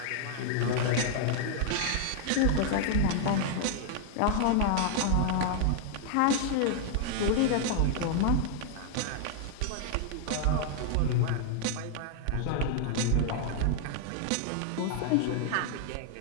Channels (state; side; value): different; both; correlation 0.00